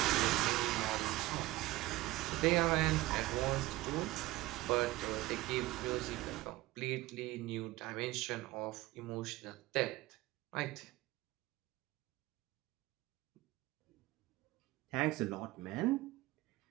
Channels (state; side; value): quieter; left; 18.4 dB